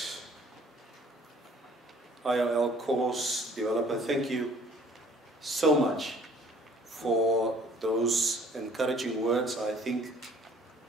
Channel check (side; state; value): both; normal; correlation 0.55